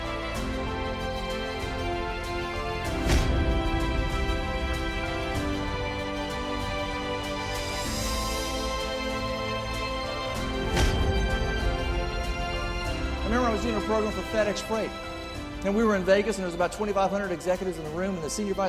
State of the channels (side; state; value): both; identical; correlation 1.00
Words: I was doing a program for FedEx Freight, and we were in Vegas, and there was about 2,500 executives in the room, and the senior